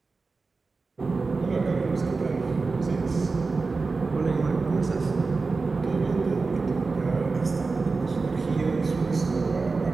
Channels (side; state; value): left; quieter; 4.1 dB